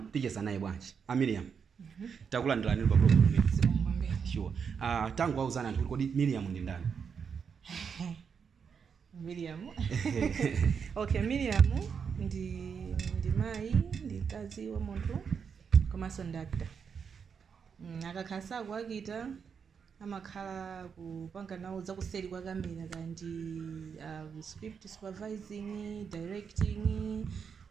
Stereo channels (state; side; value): quieter; left; 6.5 dB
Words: ticheza naye bwanji. Miriam. Takulandirani pa program imene. Sure. Tangu wauzana anthu kodi Miriam ndi ndani? Miriam. Okay, Miriam ndi mai, ndi kazi wa munthu komanso ndi actor. Akakhala kuakita amakhala kupanga nawo zakuseri kwa kamera kandi script supervising, directing,